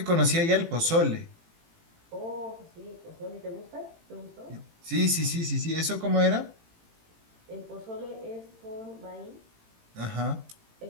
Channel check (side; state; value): left; late; 18 ms